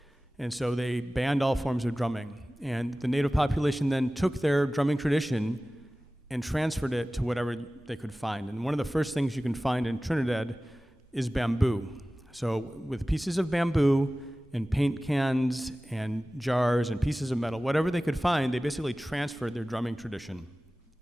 And so they banned all forms of drumming. And the native population then took their drumming tradition and transferred it to whatever they could find. And one of the first things you can find in Trinidad is bamboo. So with pieces of bamboo and paint cans and jars and pieces of metal, whatever they could find, they basically transferred their drumming tradition.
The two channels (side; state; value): both; normal; correlation 0.97